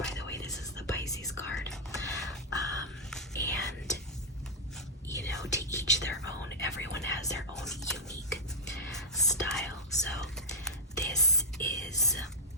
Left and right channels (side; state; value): both; normal; correlation -0.04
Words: the way. This is the Pisces card. And you know, to each their own. Everyone has their own unique style. So this is